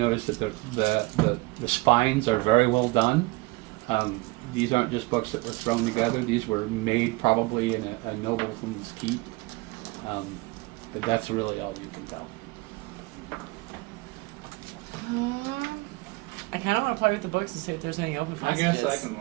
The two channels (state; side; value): quieter; left; 23.5 dB